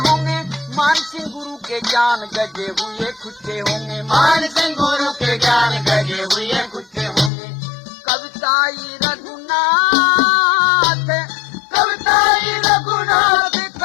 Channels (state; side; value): drops out; right; at 7.3 s